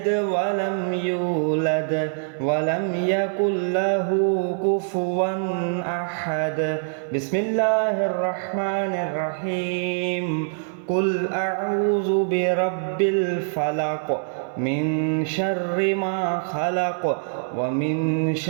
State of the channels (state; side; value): silent; left; 63 dB below the other